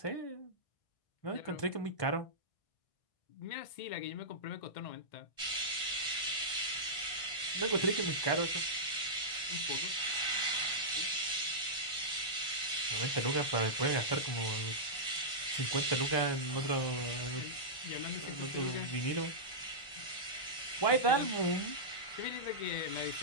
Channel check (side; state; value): right; late; 1.1 ms